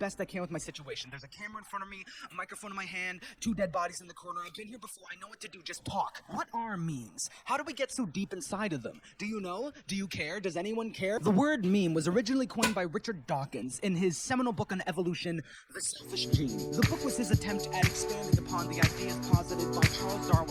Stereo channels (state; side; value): identical; both; correlation 1.00